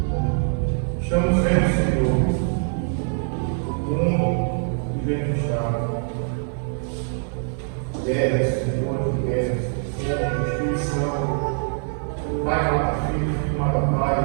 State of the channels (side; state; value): left; silent; 61 dB below the other